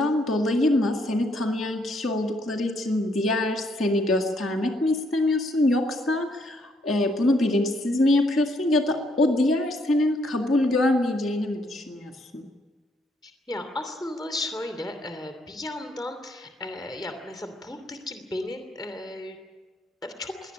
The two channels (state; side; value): normal; both; correlation 0.71